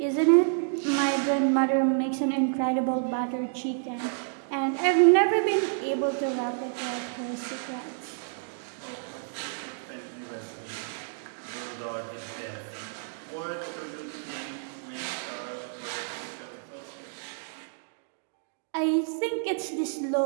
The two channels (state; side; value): silent; left; digital silence